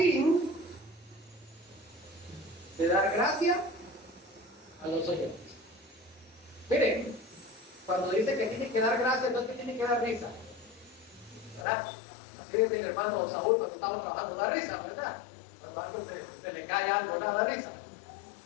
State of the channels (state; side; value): drops out; right; at 11.7 s